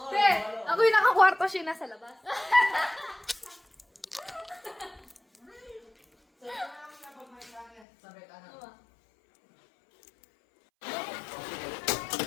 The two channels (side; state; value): right; drops out; at 7.9 s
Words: Te, ako yung nakakwarto, siya nasa labas.